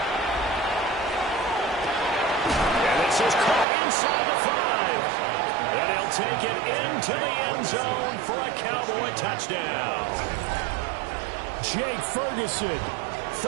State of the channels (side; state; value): left; drops out; at 3.7 s